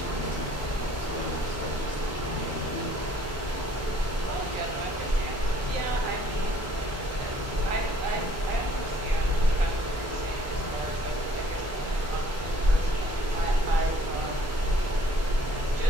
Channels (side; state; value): both; normal; correlation 0.60